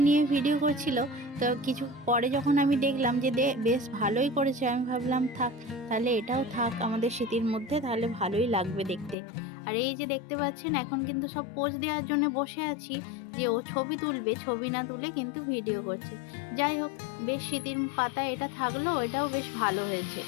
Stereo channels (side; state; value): right; drops out; at 9.2 s